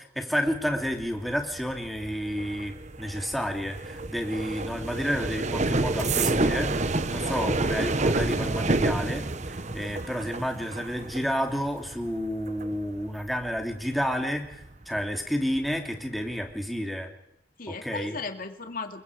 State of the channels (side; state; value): both; normal; correlation 0.72